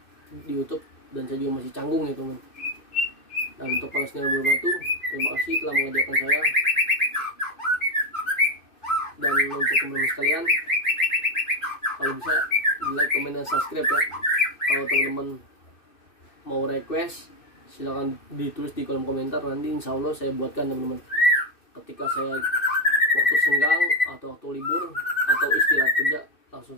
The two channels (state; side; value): late; right; 2.6 ms